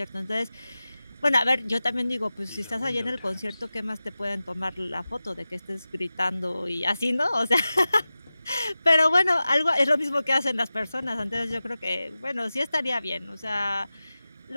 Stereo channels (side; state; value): both; inverted; correlation -0.95